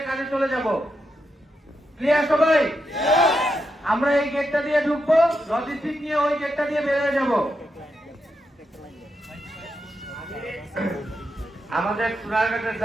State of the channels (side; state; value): both; normal; correlation 0.84